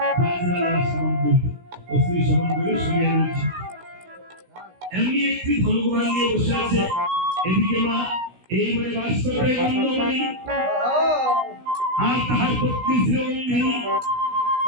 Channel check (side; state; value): left; late; 16 ms